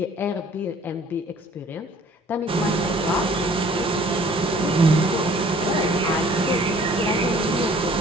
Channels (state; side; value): normal; both; correlation 0.54